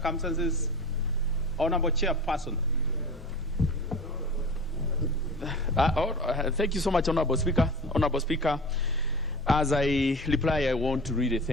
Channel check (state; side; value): normal; both; correlation 0.35